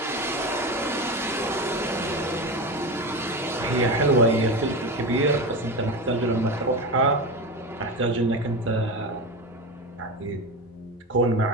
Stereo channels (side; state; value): both; normal; correlation 0.22